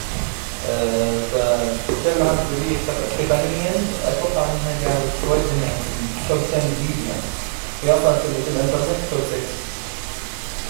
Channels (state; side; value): silent; left; 62 dB below the other